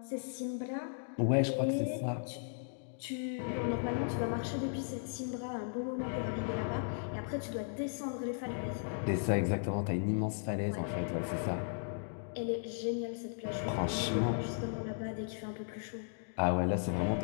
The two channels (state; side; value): silent; right; digital silence